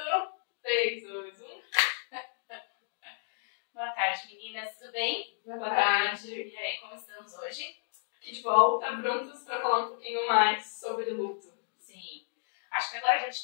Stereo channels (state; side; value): silent; right; digital silence